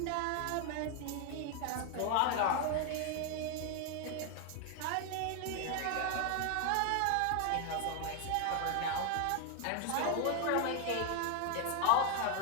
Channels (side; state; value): both; different; correlation 0.00